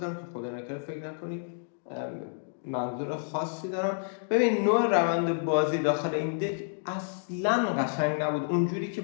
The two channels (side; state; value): right; silent; digital silence